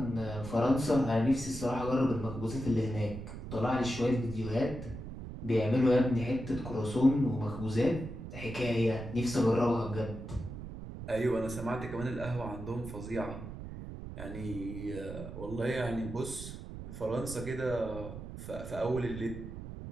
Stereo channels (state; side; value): noise; right; rumble, 10 dB below the sound